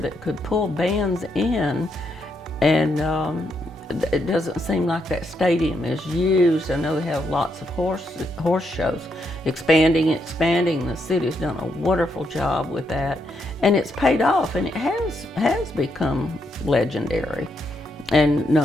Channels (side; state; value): both; normal; correlation 0.78